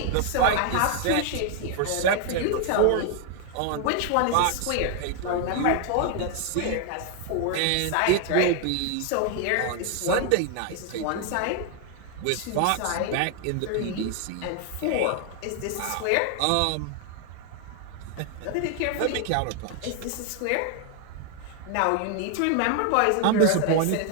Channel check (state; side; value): different; both; correlation 0.00